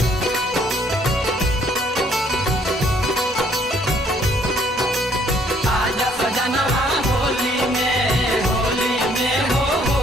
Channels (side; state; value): both; normal; correlation 0.64